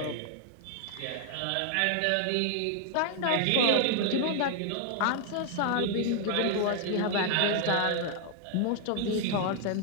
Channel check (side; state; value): both; different; correlation 0.00